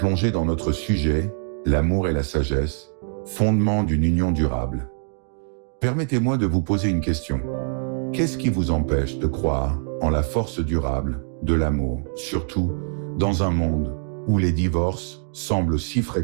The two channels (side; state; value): left; silent; 63 dB below the other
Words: dans notre sujet, l'amour et la sagesse, fondement d'une union durable, permettez-moi de vous poser une question. Qu'est-ce qui vous empêche de croire en la force durable de l'amour, surtout dans un monde où les divorces semblent si